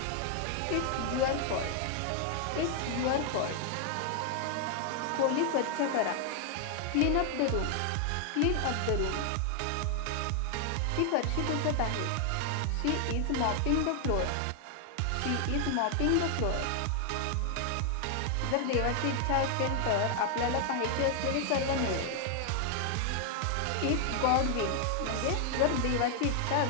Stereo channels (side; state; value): both; different; correlation 0.00